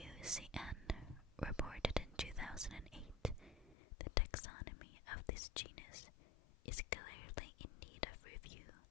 reported in 2008 the taxonomy of this genus is clearly in need of review,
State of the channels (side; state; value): right; drops out; at 3.8 s